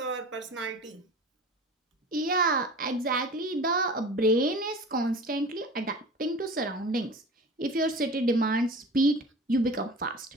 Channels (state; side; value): normal; both; correlation 0.38